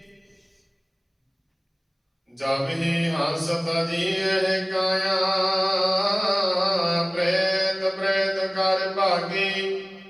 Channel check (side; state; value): both; identical; correlation 1.00